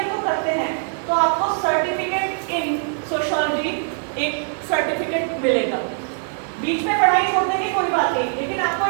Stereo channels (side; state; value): left; silent; 64 dB below the other